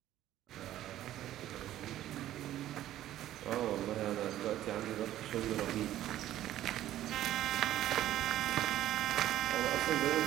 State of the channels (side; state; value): left; quieter; 13.1 dB